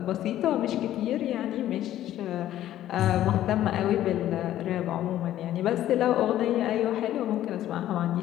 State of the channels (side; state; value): right; quieter; 12.8 dB